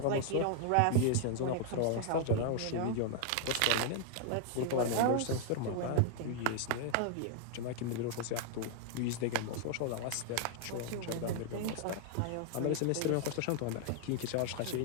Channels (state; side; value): different; both; correlation 0.00